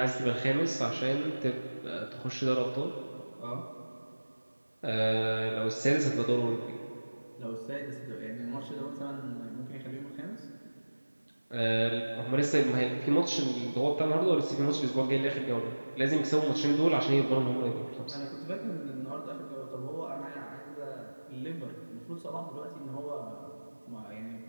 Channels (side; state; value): both; inverted; correlation -1.00